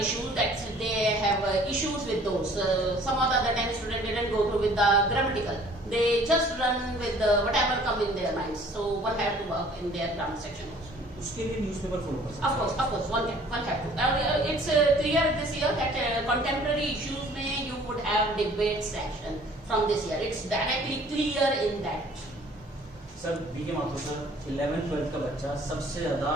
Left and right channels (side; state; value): both; normal; correlation 0.54